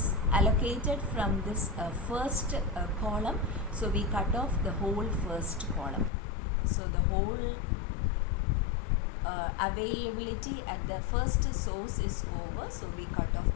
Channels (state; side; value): drops out; right; at 6.1 s